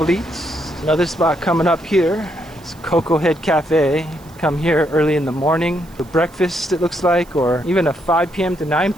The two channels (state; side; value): noise; right; hiss, 27 dB below the sound